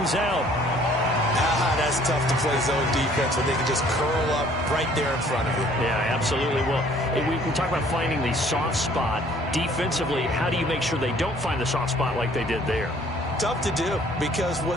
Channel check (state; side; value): normal; both; correlation 0.58